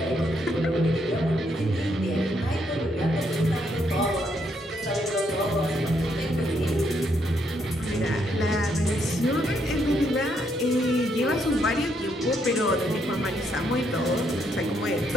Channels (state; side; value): normal; both; correlation 0.74